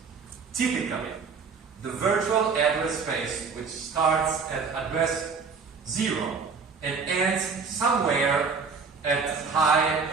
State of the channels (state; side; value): quieter; left; 5.2 dB